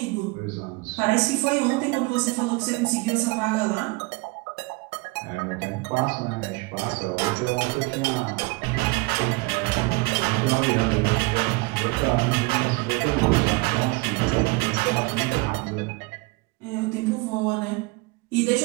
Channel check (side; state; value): left; quieter; 25.1 dB